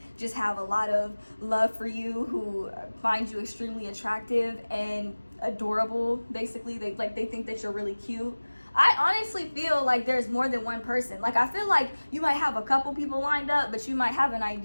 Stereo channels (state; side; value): inverted; both; correlation -1.00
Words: just have a lot of love for you, who find you extremely attractive and adorable. Basically, they think that you're really cute. I honestly feel like there's more than one person. Like, I feel like you might have a couple people lined up, but you might have an